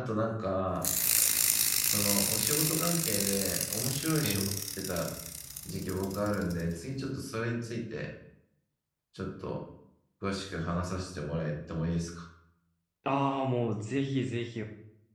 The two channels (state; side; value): identical; both; correlation 1.00